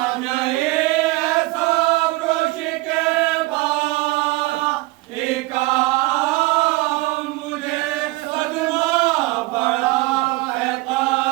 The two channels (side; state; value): left; quieter; 21.5 dB